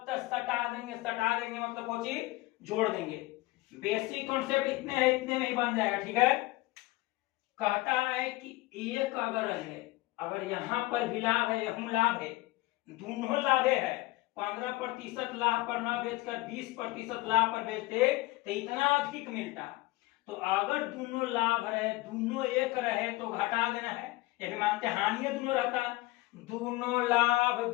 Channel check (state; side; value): quieter; right; 20.3 dB